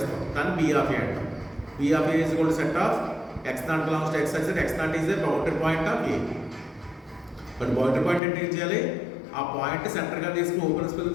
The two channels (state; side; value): drops out; right; at 8.2 s